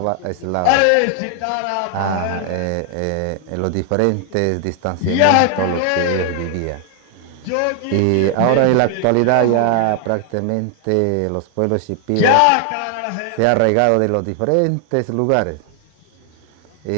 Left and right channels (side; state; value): both; different; correlation 0.00